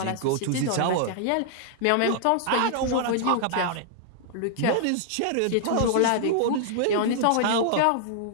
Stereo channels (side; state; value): both; different; correlation -0.01